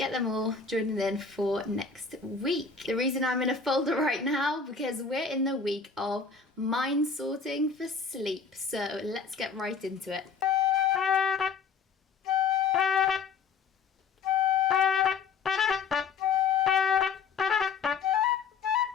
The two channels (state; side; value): quieter; right; 5.5 dB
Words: them all joining in for next week. The reason I'm in a folder right now, because we're in the week of mind sorting for sleep, so let's get right into it.